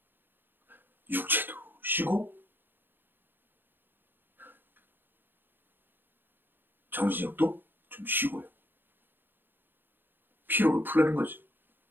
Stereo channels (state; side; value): late; left; 0.096 ms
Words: 육체도 쉬고 정신력도 좀 쉬고요. 피로를 풀라는 거죠.